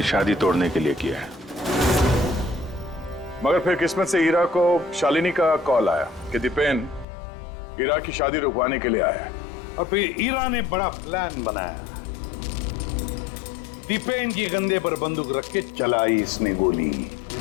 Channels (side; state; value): right; drops out; at 7.1 s